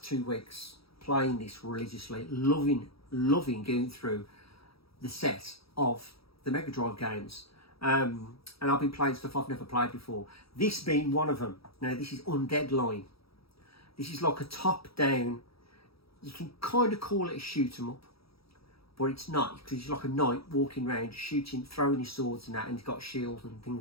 2 weeks, playing this religiously, loving going through the set of the Mega Drive games. And I've been playing stuff I've never played before. This being one of them. Now, this is Undead Line. This is like a top-down, you can kind of call it a shoot-'em-up, but it's not, because it's like a knight walking around, shooting, throwing his swords and that, and he's got shields and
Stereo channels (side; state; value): right; late; 0.76 ms